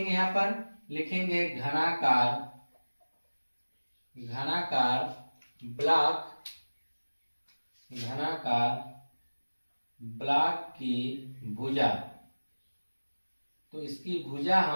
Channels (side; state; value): both; inverted; correlation -1.00